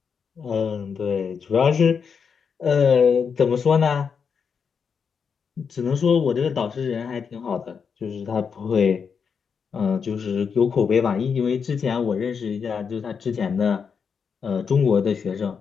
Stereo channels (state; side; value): quieter; right; 6.3 dB